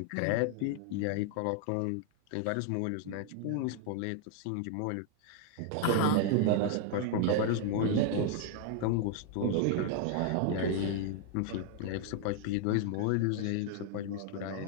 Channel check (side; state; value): both; different; correlation 0.00